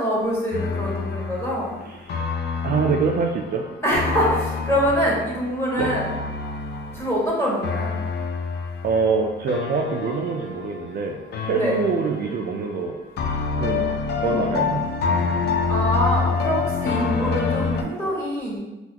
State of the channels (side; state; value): both; normal; correlation 0.36